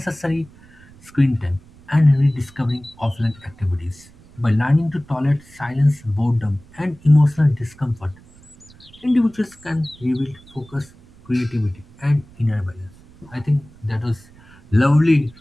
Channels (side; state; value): right; noise; rumble, 25 dB below the sound